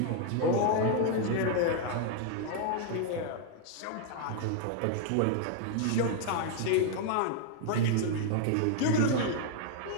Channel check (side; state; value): both; different; correlation 0.00